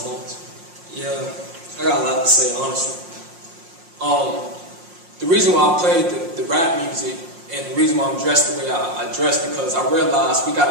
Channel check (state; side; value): late; left; 5.6 ms